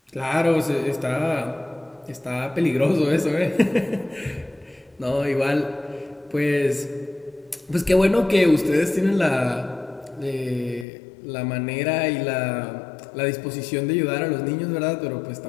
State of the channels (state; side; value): drops out; right; at 10.9 s